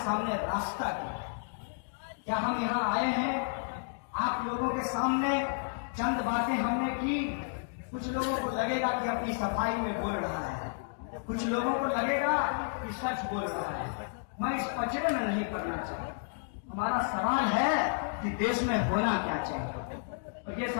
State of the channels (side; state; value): right; silent; digital silence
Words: रास्ता क्या हम यहाँ आए हैं आप लोगों के सामने चंद बातें हमने की, कुछ लोगों को लगेगा कि अपनी सफाई में बोल रहा है, कुछ लोगों को लगेगा कि सच बोल रहा है। मैं इस कचरे में नहीं पड़ना चाहता। हमारा सवाल है कि देश में होना क्या चाहिए, और ये